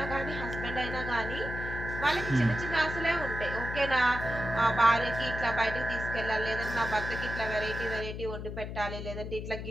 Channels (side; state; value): left; noise; hum, 7 dB below the sound